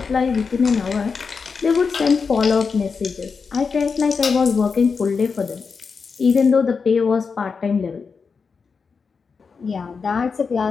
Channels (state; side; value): quieter; right; 5.3 dB